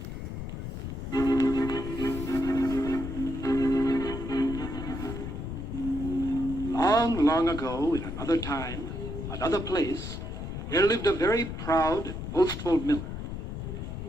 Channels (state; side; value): noise; left; rumble, 6 dB below the sound